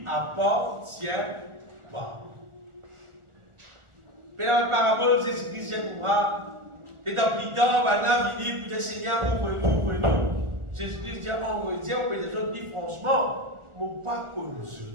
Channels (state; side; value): late; left; 1.4 ms